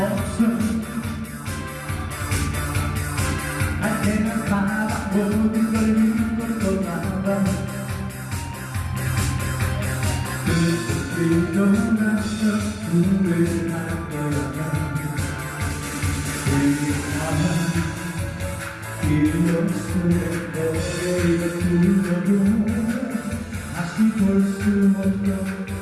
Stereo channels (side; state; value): both; identical; correlation 1.00